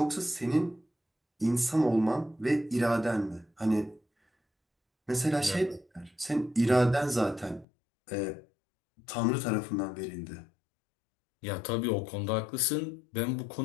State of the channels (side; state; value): right; drops out; at 7.7 s